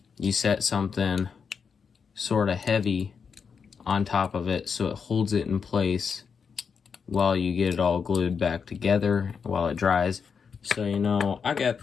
you set something sort of heavy on top of it so it holds it in place while you get it all glued back together while it dries. So you know, I got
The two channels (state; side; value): quieter; right; 6.1 dB